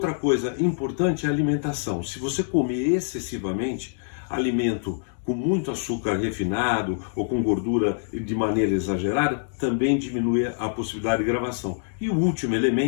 coisa importante é a alimentação. Se você comer excessivamente alimento com muito açúcar refinado ou com gordura de maneira exagerada, também diminui a possibilidade de gravação. E o último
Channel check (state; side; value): silent; right; digital silence